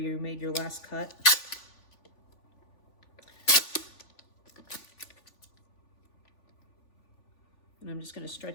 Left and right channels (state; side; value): late; right; 3.5 ms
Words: made your last cut. And I'm just going to